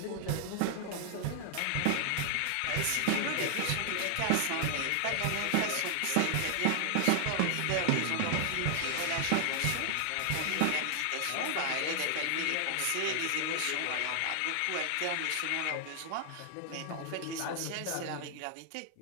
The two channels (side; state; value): both; different; correlation 0.00